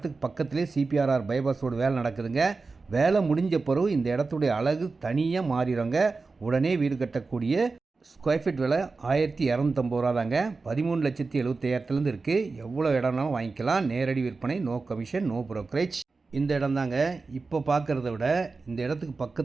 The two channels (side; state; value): left; quieter; 4.0 dB